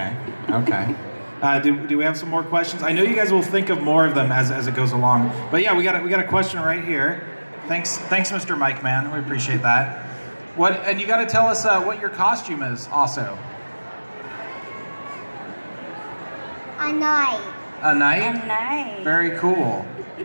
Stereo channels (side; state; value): both; inverted; correlation -1.00